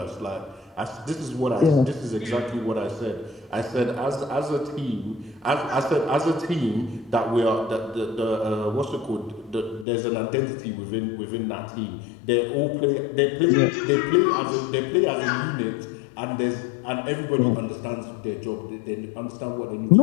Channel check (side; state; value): right; drops out; at 9.9 s